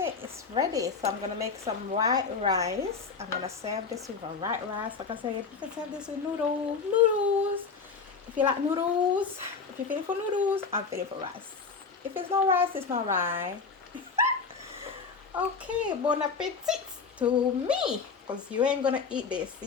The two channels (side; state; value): right; quieter; 5.2 dB